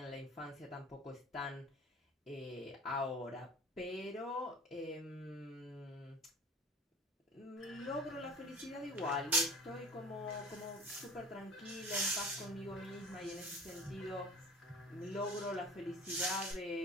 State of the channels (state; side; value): normal; both; correlation 0.43